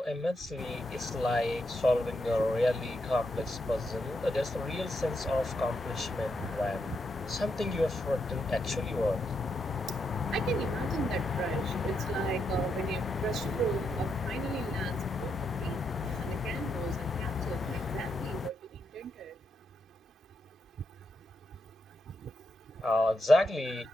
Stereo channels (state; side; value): normal; both; correlation 0.81